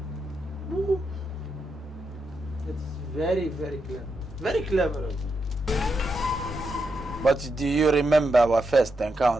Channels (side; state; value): both; normal; correlation 0.84